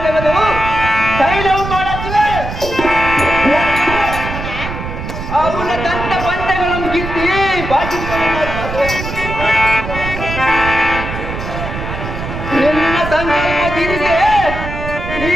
ತೆಗೆದು ತೈಲವು ಮಾಡುತ್ತಿವೆ. ಅವನ ದಂತ ಬಂಡೆಗಳನ್ನು ಕಿತ್ತಿ ಬಾಕಿ ನಿನ್ನ ಸಂಕಲ್ಪದಿರಿಗೆ ಈ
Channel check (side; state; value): right; noise; rumble, 7 dB below the sound